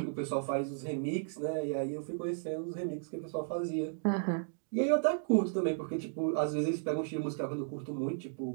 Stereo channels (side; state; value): left; silent; digital silence